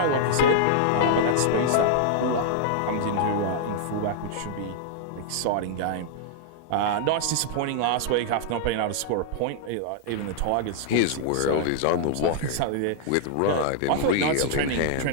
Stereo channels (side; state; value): both; different; correlation -0.01